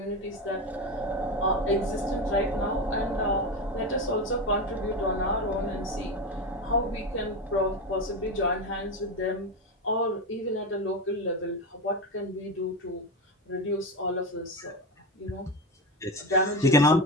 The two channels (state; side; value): normal; both; correlation 0.18